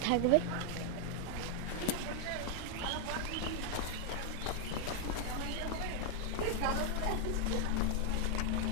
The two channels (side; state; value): both; different; correlation 0.00